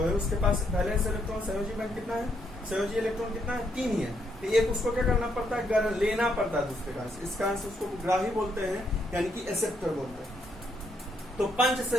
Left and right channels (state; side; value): normal; both; correlation 0.75